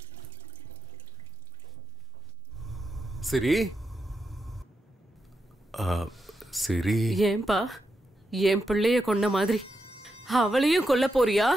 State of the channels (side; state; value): both; normal; correlation 0.86